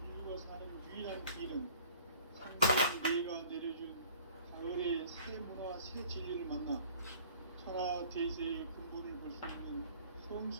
인류가 사는 유일한 길은 상대인 내가 내려준 가을의 새 문화, 새 진리를 만나 천하 대세의 근본을 볼 수 있는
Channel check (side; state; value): both; inverted; correlation -0.51